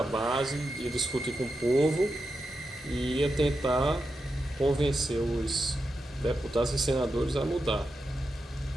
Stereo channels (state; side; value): normal; both; correlation 0.88